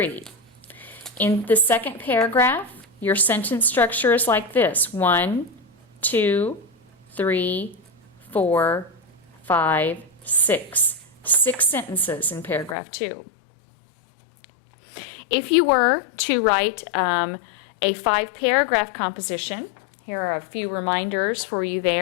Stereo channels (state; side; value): drops out; right; at 12.8 s